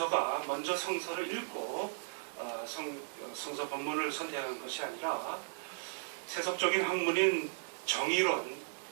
먼저 성서를 읽고 성서 본문을 선택한 것이 아니라 세속적인 학문인 정의론,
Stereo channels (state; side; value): silent; left; 54 dB below the other